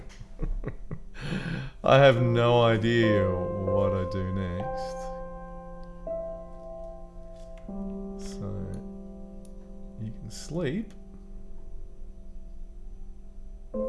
I have no idea what I do next. So you can sleep.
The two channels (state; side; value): identical; both; correlation 1.00